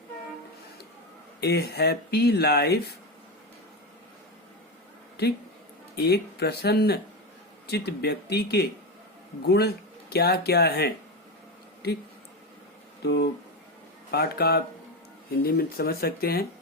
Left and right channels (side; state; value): both; normal; correlation 0.16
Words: ए हैप्पी लाइफ, ठीक. एक प्रसन्न चित्त व्यक्ति के गुण क्या क्या हैं, ठीक. तो पाठ का आप हिंदी में समझ सकते हैं.